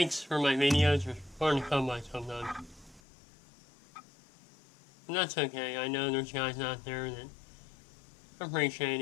for my videos are hard to come by sometimes. And that's okay. I know there's guys out there that appreciate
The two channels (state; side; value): drops out; right; at 3.0 s